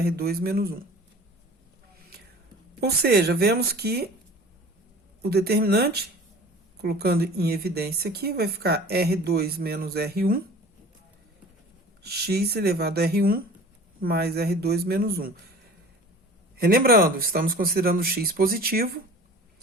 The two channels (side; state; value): both; normal; correlation 0.43